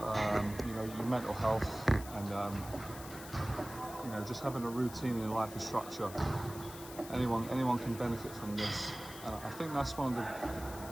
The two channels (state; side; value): noise; left; hiss, 14 dB below the sound